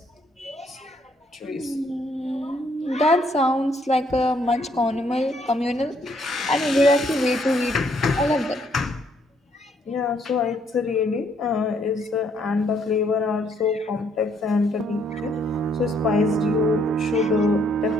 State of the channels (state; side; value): normal; both; correlation 0.69